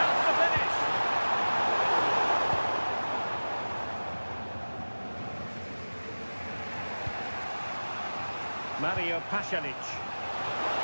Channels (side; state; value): both; inverted; correlation -1.00